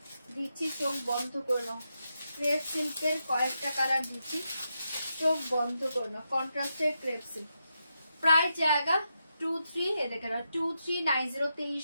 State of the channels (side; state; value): both; inverted; correlation -0.85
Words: দিচ্ছি, চোখ বন্ধ করে নাও। ক্রেপ সিল্কের কয়েকটা কালার দিচ্ছি, চোখ বন্ধ করে নাও। কন্ট্রাস্টের ক্রেপ সিল্ক, প্রাইস জায়গা 23, এ দেখে নাও 2390,